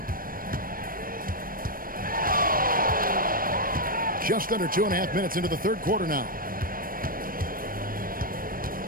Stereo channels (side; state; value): left; late; 0.41 ms